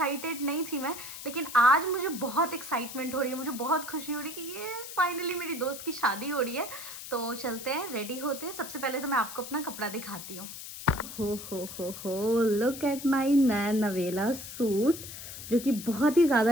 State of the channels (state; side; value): noise; left; hiss, 11 dB below the sound